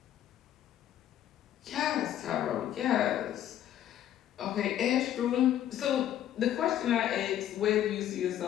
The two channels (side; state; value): right; quieter; 11.4 dB